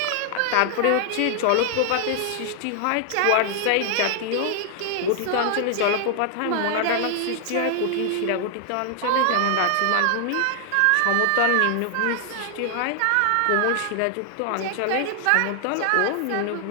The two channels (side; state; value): both; different; correlation 0.00